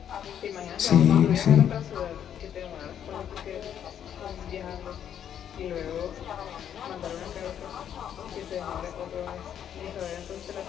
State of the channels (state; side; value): quieter; right; 9.4 dB